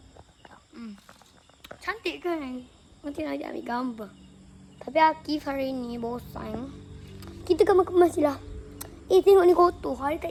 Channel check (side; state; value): both; identical; correlation 1.00